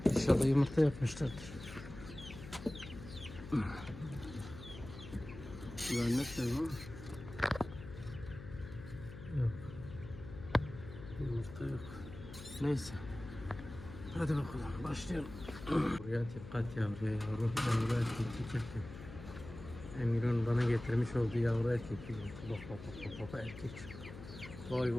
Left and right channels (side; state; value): left; noise; hum, 13 dB below the sound